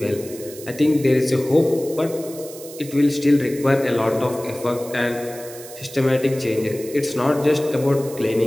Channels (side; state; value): right; noise; hiss, 16 dB below the sound